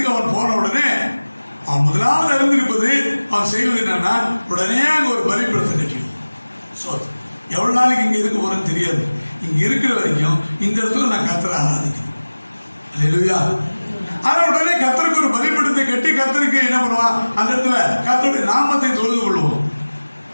அவன் போன உடனே அவன் முதலாவது அறிந்திருப்பது அவன் செய்வது என்னன்னா, உடனே அங்க ஒரு பலிபீடத்தை கட்டிடும். எவ்வளவு நாளைக்கு இங்க இருக்க போறேன்னு தெரியாது, இங்க இருக்கிற வரைக்கும் இந்த இடத்துல நான் கர்த்தரை ஆராதிக்கணும். அல்லேலூயா. ஆனா உடனே கர்த்தருக்கு ஒரு பலிபீடத்தை கட்டி கர்த்தருக்கு என்ன பண்ணுவான், அந்த இடத்துல கர்த்தருடைய நாமத்தை தொழுது கொள்வோம்.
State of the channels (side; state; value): both; inverted; correlation -1.00